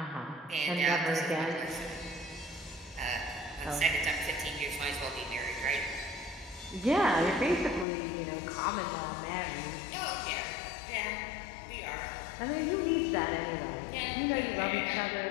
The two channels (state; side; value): drops out; right; at 7.9 s